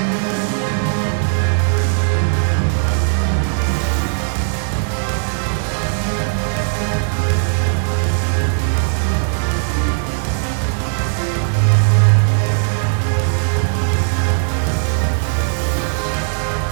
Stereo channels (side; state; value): left; silent; digital silence